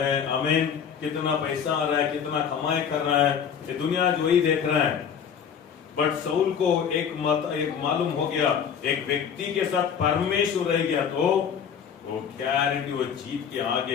आमीन, कितना पैसा आ रहा है, कितना कमाई कर रहा है, ये दुनिया जो वही देख रहा है। बट साउल को एक मालूम हो गया, एक व्यक्ति के साथ परमेश्वर रह गया तो वो गारंटी वो जीत के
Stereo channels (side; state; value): right; quieter; 7.6 dB